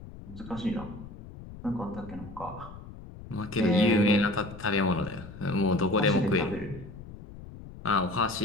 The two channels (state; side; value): noise; left; rumble, 15 dB below the sound